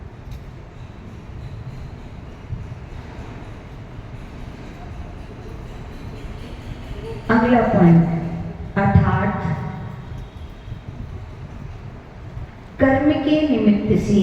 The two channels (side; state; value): both; identical; correlation 1.00